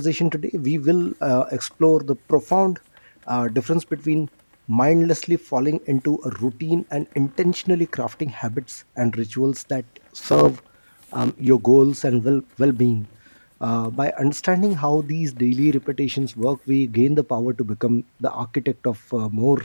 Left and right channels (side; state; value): both; inverted; correlation -1.00